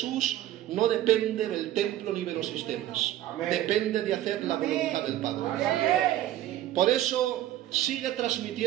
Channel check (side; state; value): left; quieter; 13.4 dB